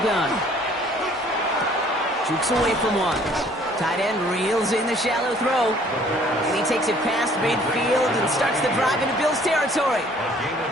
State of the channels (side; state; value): both; normal; correlation 0.57